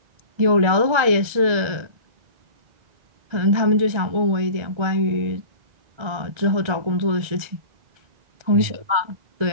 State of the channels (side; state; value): left; late; 1.4 ms